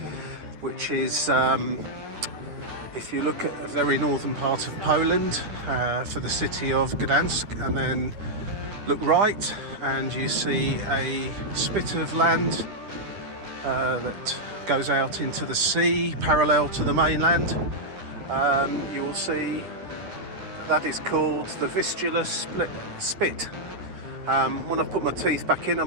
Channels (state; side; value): late; left; 10 ms